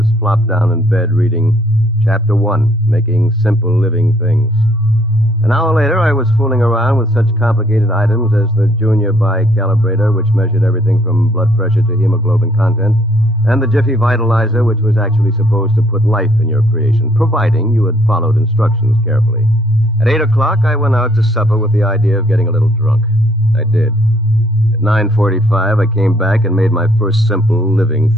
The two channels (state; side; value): normal; both; correlation 0.65